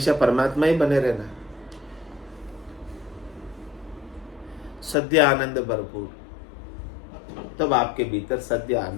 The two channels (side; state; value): right; drops out; at 5.0 s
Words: परमात्मा ही बने रहना है। सद्य आनंद भरपूर, तब आपके भीतर सद्य